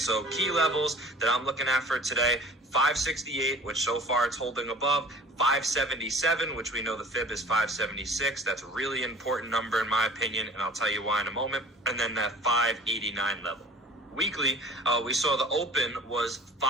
key levels that I'm looking at for today, 568, which so far it's holding above, 577, which we know the fib is 576. That's a really important number in my opinion, and I'll tell you why in a moment. And then that 589 level. Weekly, we saw the open was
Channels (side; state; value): both; normal; correlation 0.45